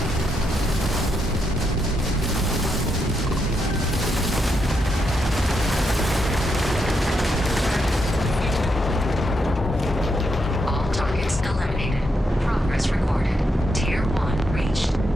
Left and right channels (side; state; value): both; normal; correlation 0.81